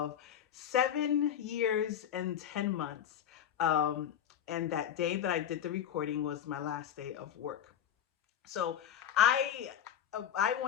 7 years and 10 months. And that day that I did the recording was my last day of work. So I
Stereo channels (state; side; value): quieter; right; 9.6 dB